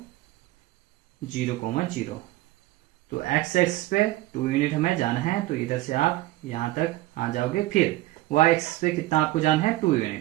0,0। तो एक्स एक्स पे 2 यूनिट हमें जाना है, तो इधर से आप यहां तक आ जाओगे। फिर वाई एक्स पे कितना आपको जाना है, 2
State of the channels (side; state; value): left; quieter; 17.4 dB